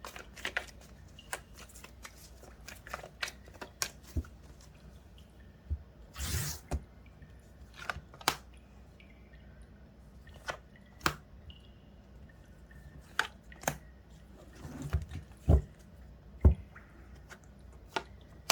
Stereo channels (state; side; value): identical; both; correlation 1.00